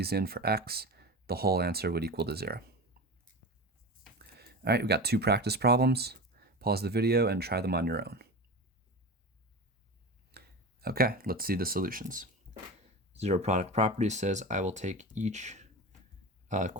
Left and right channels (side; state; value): both; normal; correlation 0.27